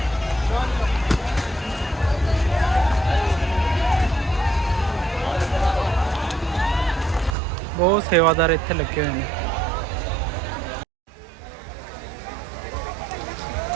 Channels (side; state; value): left; drops out; at 7.4 s